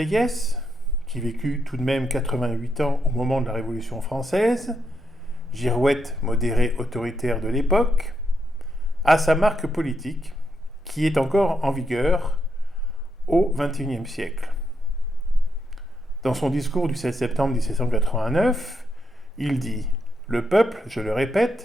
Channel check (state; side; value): normal; both; correlation 0.80